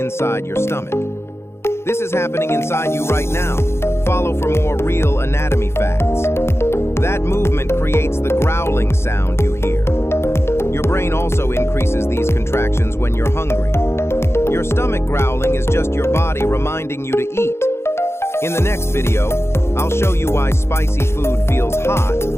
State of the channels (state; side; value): late; right; 0.12 ms